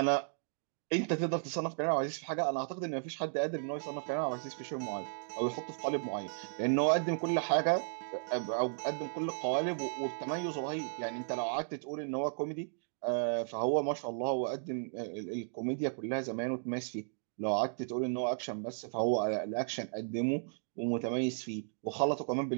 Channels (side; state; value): left; silent; digital silence